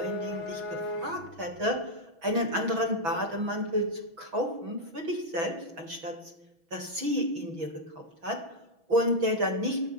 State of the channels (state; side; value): late; left; 6.1 ms